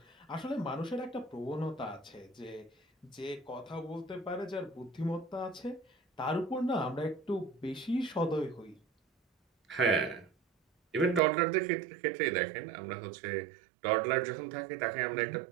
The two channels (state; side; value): drops out; left; at 11.2 s